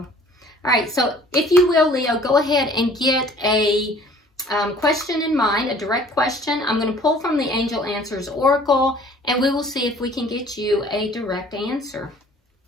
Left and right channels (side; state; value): both; normal; correlation 0.52